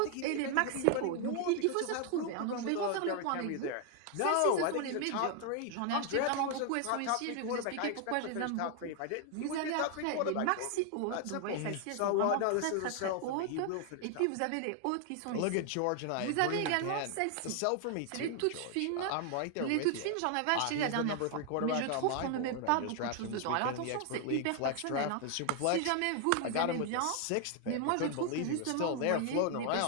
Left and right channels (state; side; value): different; both; correlation 0.00